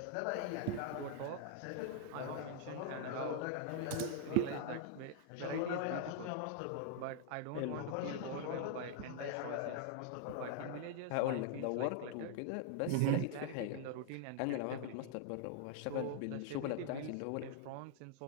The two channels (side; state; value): both; different; correlation 0.00